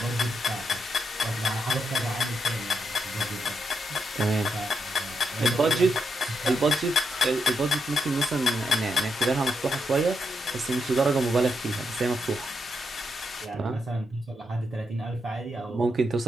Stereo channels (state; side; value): normal; both; correlation 0.81